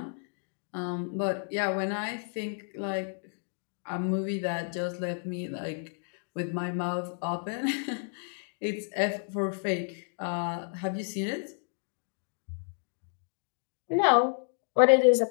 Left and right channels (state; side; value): silent; right; 57 dB below the other